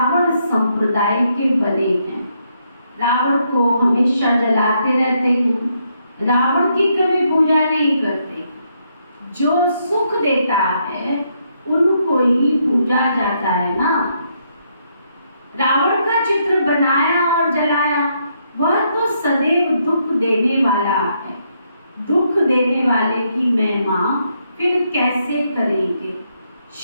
संप्रदाय के बने हैं। रावण को हमेशा जलाते रहते हैं, रावण की कभी पूजा नहीं करते। जो सुख देता है उनको ही पूजा जाता है ना। रावण का चित्र बनाया और जलाया, वह तो सदैव दुख देने वाला है। दुख देने वाले की महिमा फिर कैसे करेंगे।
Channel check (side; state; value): both; inverted; correlation -0.76